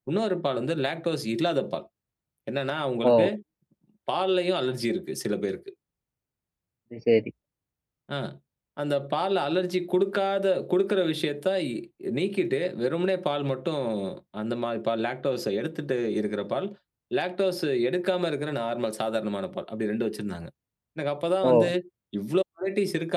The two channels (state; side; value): identical; both; correlation 1.00